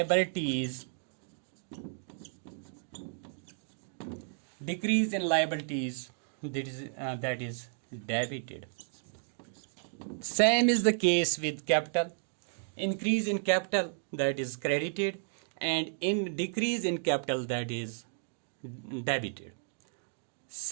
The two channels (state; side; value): silent; left; digital silence